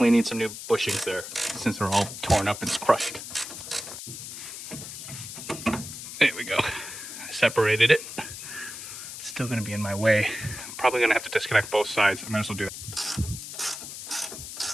need some new bushings there since they're all torn up and crushed. There we go. I separated it. It's still gonna be in my way. I'm probably gonna have to disconnect both sides. I might as well do that.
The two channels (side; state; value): left; noise; hiss, 10 dB below the sound